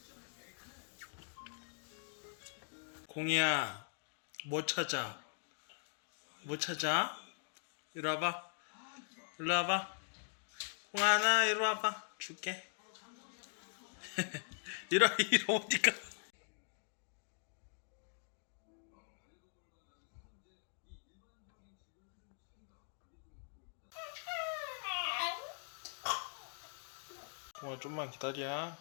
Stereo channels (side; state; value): right; silent; digital silence